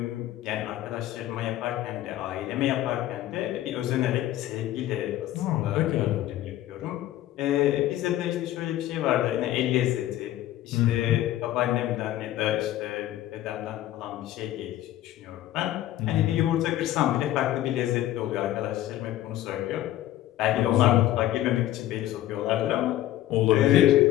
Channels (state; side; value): quieter; right; 13.8 dB